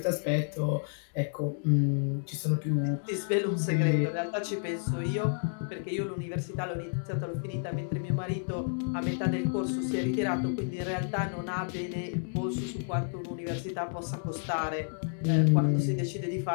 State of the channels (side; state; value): right; silent; digital silence